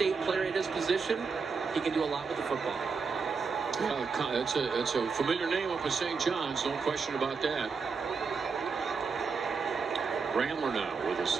player at his position. He can do a lot with the football. It's a familiar name up at St. John's, no question about that. Ramler now with a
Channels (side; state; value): left; quieter; 5.1 dB